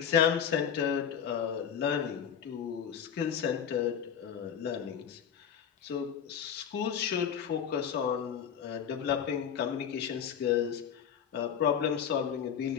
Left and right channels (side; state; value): right; quieter; 8.1 dB